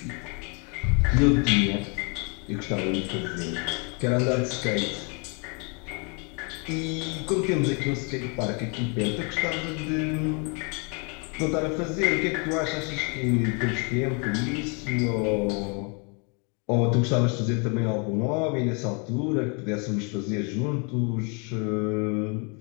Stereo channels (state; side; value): quieter; right; 34.7 dB